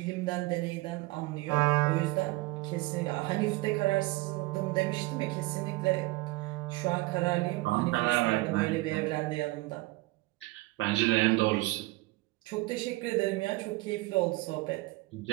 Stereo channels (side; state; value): left; quieter; 21.1 dB